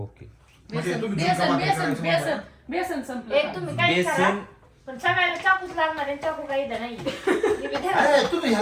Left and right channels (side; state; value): both; identical; correlation 1.00